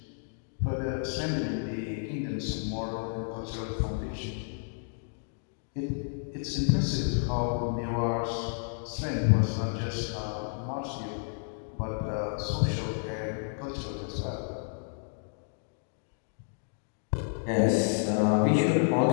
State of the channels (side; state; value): right; silent; digital silence